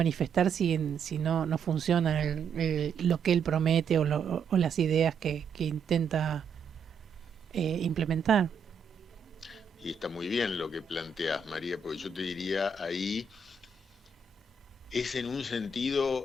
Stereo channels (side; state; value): left; quieter; 5.0 dB